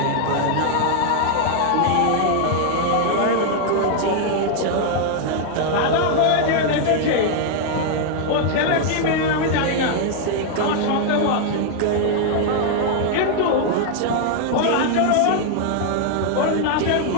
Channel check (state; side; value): different; both; correlation 0.00